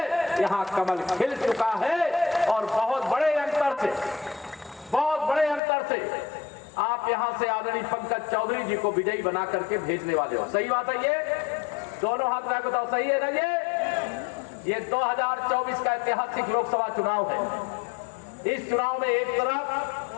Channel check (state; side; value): drops out; right; at 5.6 s